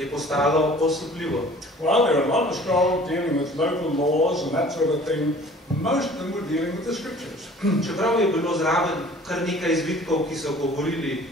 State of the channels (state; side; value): normal; both; correlation 0.49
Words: postalo osupljivo. Well, there are a lot of scrolls dealing with local laws and that sort of thing. Most of them were dealing with the scriptures. Čeprav je bilo zraven kar nekaj izvitkov, ki so govorili